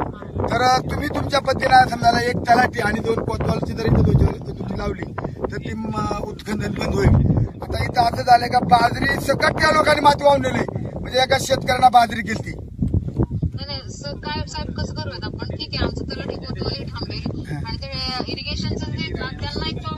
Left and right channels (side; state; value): both; identical; correlation 1.00